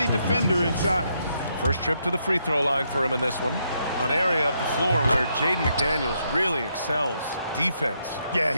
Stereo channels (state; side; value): inverted; both; correlation -0.77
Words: defender inside. First trip to the free throw line for him in this one. An area of the floor where Jaden McDaniels really excels. Defense. Yeah,